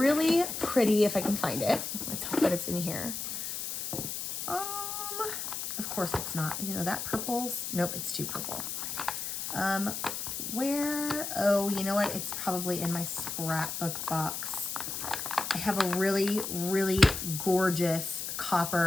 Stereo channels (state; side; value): noise; left; hiss, 4 dB below the sound